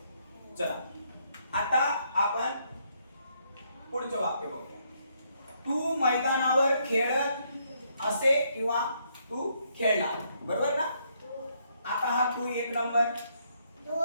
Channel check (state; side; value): inverted; both; correlation -0.73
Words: चला आता आपण पुढचं वाक्य बघूया. तू मैदानावर खेळत असे किंवा तू खेळणार. बरोबर ना? आता हा तू 1 नंबर,